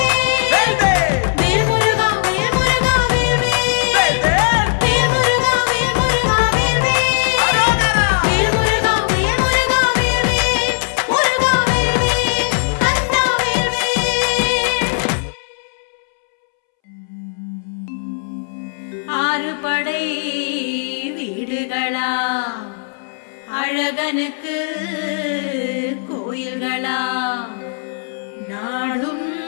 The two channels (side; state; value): right; silent; 67 dB below the other